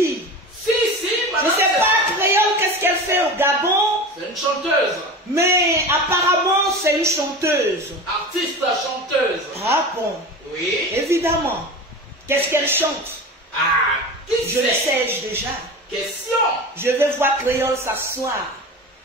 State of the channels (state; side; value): normal; both; correlation 0.31